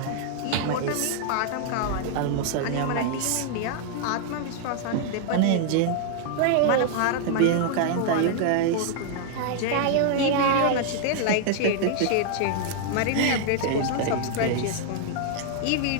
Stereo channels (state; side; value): different; both; correlation 0.00